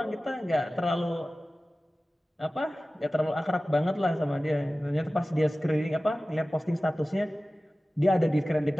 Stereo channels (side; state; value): both; normal; correlation 0.96